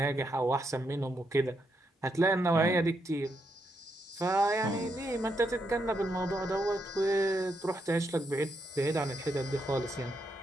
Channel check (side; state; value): both; normal; correlation 0.80